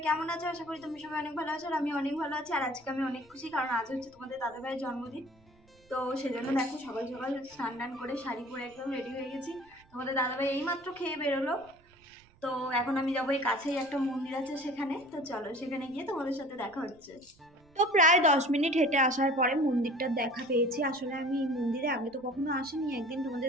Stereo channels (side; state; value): right; noise; rumble, 29 dB below the sound